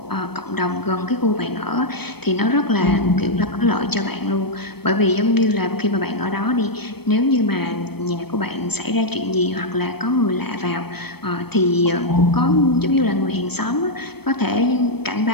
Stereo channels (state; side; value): late; right; 0.97 ms